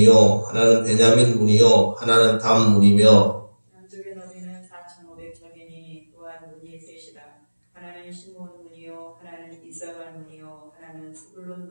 하나는 베냐민 문이요 하나는 단 문이며. 남쪽의 너비는 4,500척이니 또한 문이 셋이라. 하나는 시몬 문이요 하나는 이사갈 문이요 하나는 스불론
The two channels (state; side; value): inverted; both; correlation -1.00